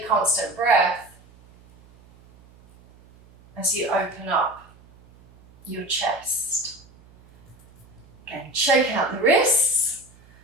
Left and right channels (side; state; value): right; noise; hum, 27 dB below the sound